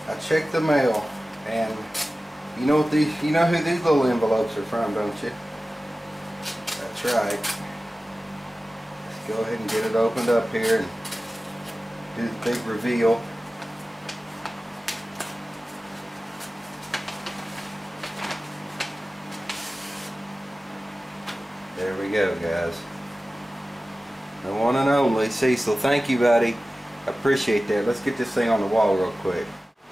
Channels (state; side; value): normal; both; correlation 0.96